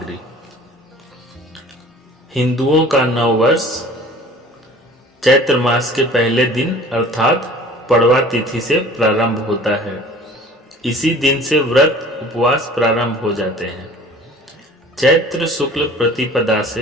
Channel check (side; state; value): both; normal; correlation 0.47